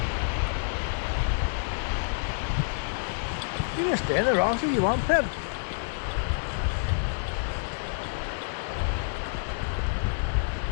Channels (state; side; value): silent; right; digital silence